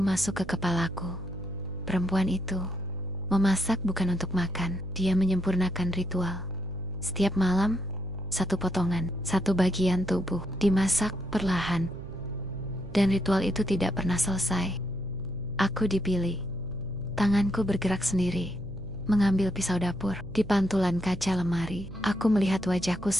masuk ke kepalaku. Perempuan itu memasak bukan untuk makan, dia menyempurnakan ritual. Setiap malam, satu potongan, satu bagian tubuh dimasak perlahan. Dan ritual itu tidak pernah selesai. Aku dipilih. Tanganku bergerak sendiri, mengambil pisau dapur. Di pantulan kaca lemari, aku melihat wajahku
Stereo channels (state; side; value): noise; right; hum, 13 dB below the sound